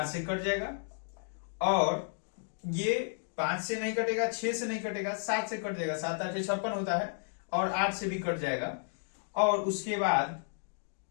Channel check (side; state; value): right; silent; digital silence